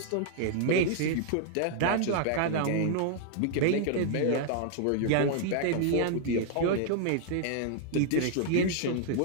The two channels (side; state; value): both; different; correlation -0.01